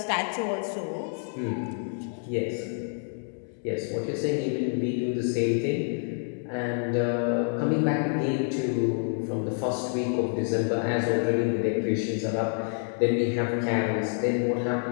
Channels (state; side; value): silent; right; 56 dB below the other